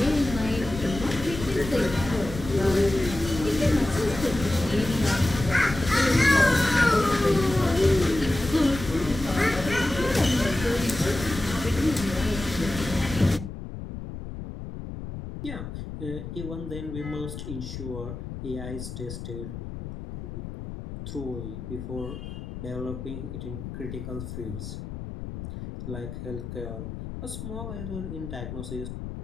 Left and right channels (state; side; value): noise; left; rumble, 9 dB below the sound